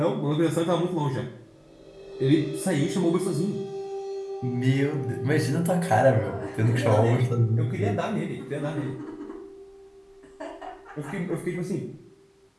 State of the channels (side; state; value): both; identical; correlation 1.00